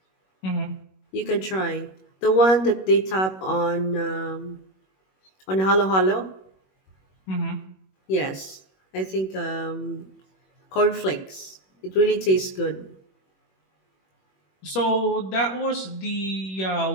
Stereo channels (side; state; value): right; late; 21 ms